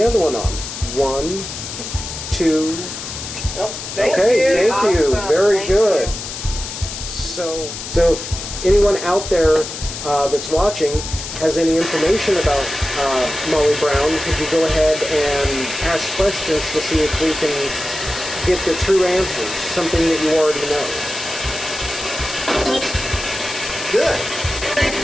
other one on. 1, 2. Well, thank you. Thank you. Awesome. Very Thank good. you. So if anyone out there that's watching has any information about Molly Brown, could you go ahead and ask questions to see if we can get the true answers, something that you already know? Good.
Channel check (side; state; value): left; noise; hiss, 8 dB below the sound